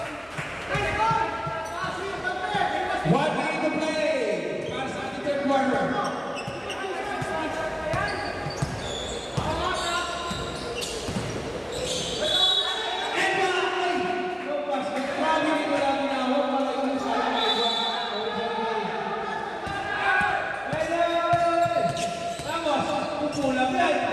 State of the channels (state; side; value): identical; both; correlation 1.00